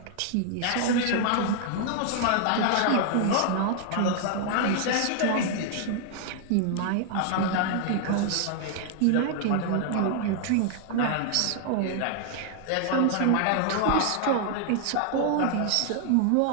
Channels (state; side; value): different; both; correlation 0.00